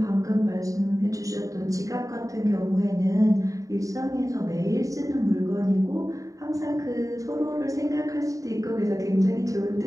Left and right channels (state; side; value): late; left; 0.16 ms